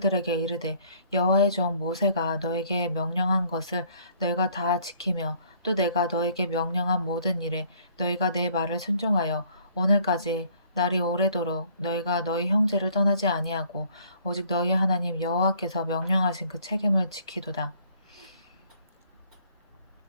이르되 여호와의 종 모세가 너에게 명령한 것을 너희가 다 지키며 또 내가 너에게 명령한 모든 일에 너희가 내 말을 순종하여 오늘까지 날이 오래도록 너희가 너희 형제를 떠나지 아니하고 오직 너희 하나님 여호와께서 명령하신 그 책임을 지키도다.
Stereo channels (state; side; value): inverted; both; correlation -0.59